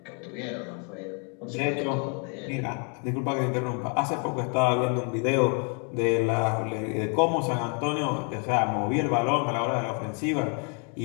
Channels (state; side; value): quieter; right; 36.6 dB